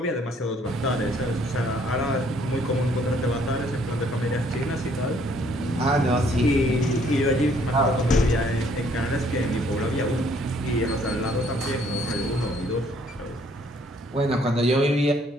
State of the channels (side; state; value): both; normal; correlation 0.64